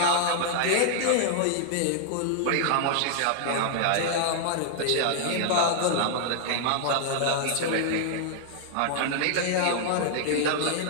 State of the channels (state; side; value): different; both; correlation -0.01